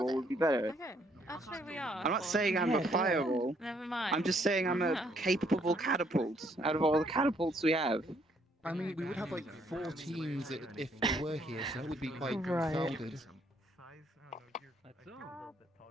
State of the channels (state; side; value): normal; both; correlation 0.68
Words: would be better. Okay. Actually, we are. I'm not saying I'm a fireball. Never mind. I'm just saying I'm a capable catapult out of all the catapults we have. I mean, we would have like 4 teams if they were here, so that would be quite Right. crowded. That's all.